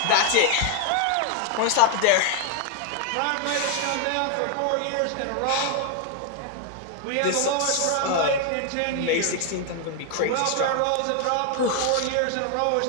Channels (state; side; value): different; both; correlation 0.00